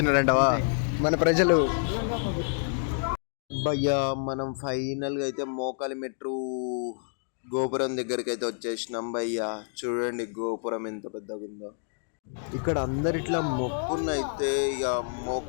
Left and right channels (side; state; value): right; silent; digital silence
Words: మన ప్రజలు? భయ్యా మనం ఫైనల్గా అయితే మోకాలి మెట్రో గోపురం దగ్గరికి అయితే వచ్చేసినాం భయ్యా. చూడండి గోపురం ఎంత పెద్దగా ఉందో. ఇక్కడ అందరు ఇట్లా మొక్కున్న అయితే ఇక